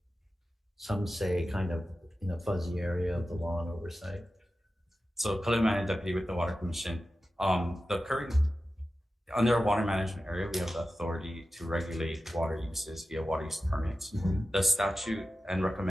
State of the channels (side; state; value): both; normal; correlation 0.93